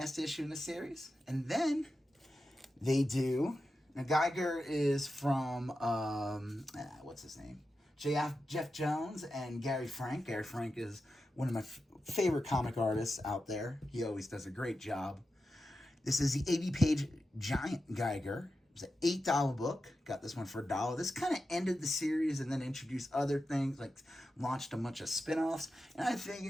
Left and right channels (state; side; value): normal; both; correlation 0.91